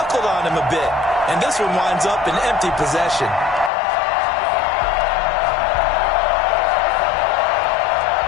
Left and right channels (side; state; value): right; drops out; at 3.7 s